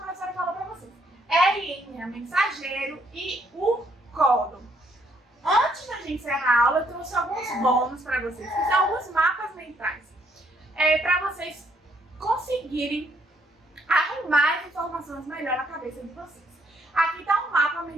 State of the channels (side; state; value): both; normal; correlation 0.69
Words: falou para vocês. RNA mensageiro e o códon. Antes da gente encerrar a aula, eu trouxe alguns bônus para vocês, que são alguns mapas mentais. Para vocês conseguirem arrumar as informações melhor na cabeça de vocês. Aqui está um mapa